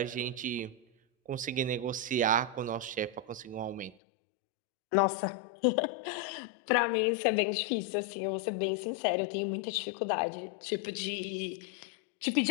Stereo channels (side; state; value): right; drops out; at 4.0 s